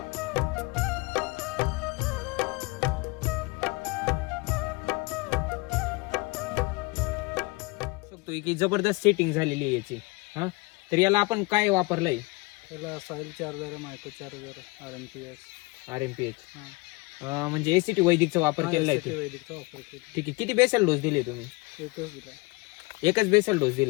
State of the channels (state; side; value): quieter; right; 25.3 dB